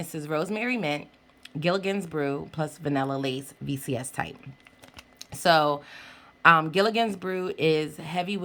is rosemary mint, Gilligan's Brew, plus vanilla lace VCS type. So Gilligan's Brew is heavy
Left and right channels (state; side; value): identical; both; correlation 1.00